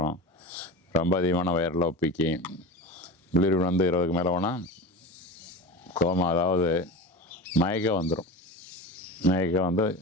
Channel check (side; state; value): both; normal; correlation 0.29